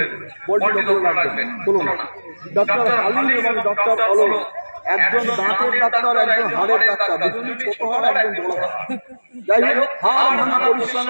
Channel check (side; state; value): both; inverted; correlation -1.00